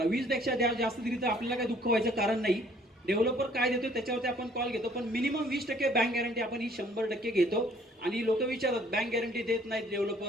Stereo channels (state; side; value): normal; both; correlation 0.59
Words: 20 पेक्षा जास्त दिली तर आपल्याला काही दुःख व्हायचं कारण नाही. डेव्हलपर काय देतो त्याच्यावरती आपण कॉल घेतो, पण मिनिमम 20% बँक गॅरंटी आपण ही 100% घेतो. आणि लोक विचारतात बँक गॅरंटी देत नाहीत